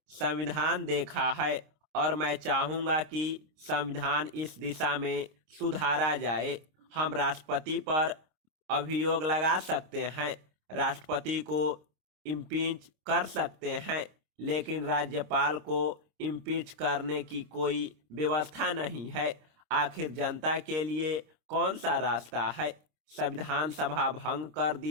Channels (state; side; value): late; left; 26 ms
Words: संविधान देखा है और मैं चाहूंगा कि संविधान इस दिशा में सुधारा जाए। हम राष्ट्रपति पर अभियोग लगा सकते हैं, राष्ट्रपति को इम्पीच कर सकते हैं, लेकिन राज्यपाल को इम्पीच करने की कोई व्यवस्था नहीं है। आखिर जनता के लिए कौन सा रास्ता है? संविधान सभा भंग कर